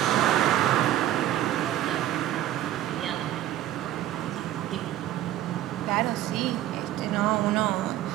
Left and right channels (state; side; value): quieter; left; 13.1 dB